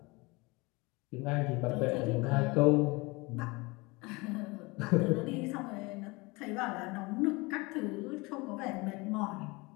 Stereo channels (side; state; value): right; quieter; 24.9 dB